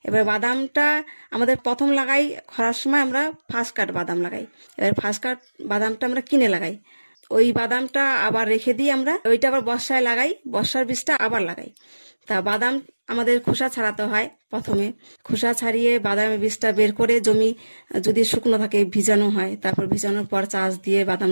এবার বাদামটা আমাদের প্রথম লাগাই খরার সময়, আমরা ফার্স্ট কাট বাদাম লাগাই। এবার ফার্স্ট কাট বাদামটা আমরা কিনে লাগাই। ওই বাদামটা আবার রেখে দিই আমরা, ওইটা আবার বর্ষায় লাগাই, বর্ষার বীজটা আবার লাগাই। তা বাদাম আমাদের খোসা ছাড়াতে হয়। প্রথমে খোসা ছাড়িয়ে বাদামের বীজটা বের করে জমি যদি শুকনো থাকে ভিজানো হয়, তারপর ভিজানোর পর চাষ দিয়ে বাদাম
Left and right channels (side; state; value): both; inverted; correlation -1.00